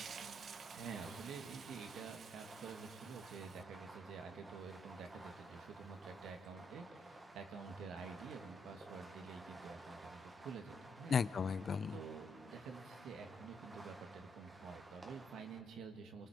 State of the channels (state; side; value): normal; both; correlation 0.75